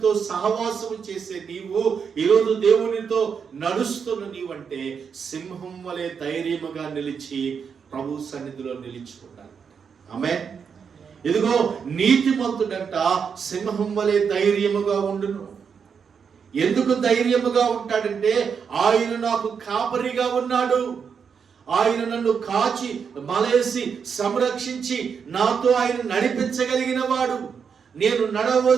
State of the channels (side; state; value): left; quieter; 6.5 dB